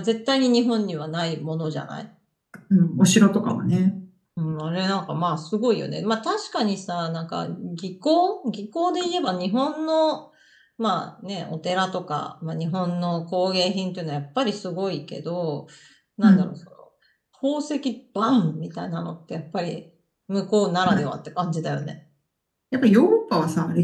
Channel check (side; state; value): both; identical; correlation 1.00